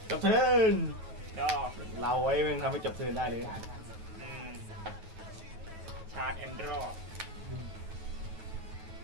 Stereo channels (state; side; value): late; left; 9.3 ms